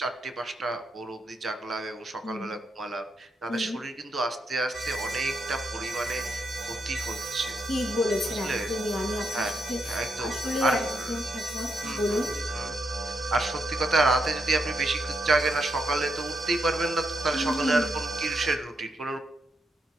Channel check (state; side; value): normal; both; correlation 0.80